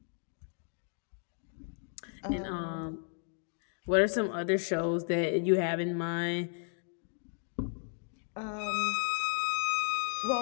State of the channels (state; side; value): silent; right; 55 dB below the other